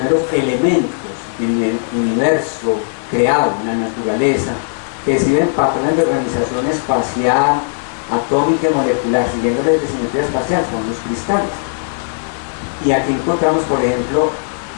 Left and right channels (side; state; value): right; silent; 61 dB below the other